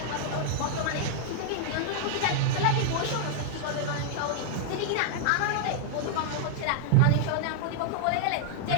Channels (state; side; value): different; both; correlation -0.01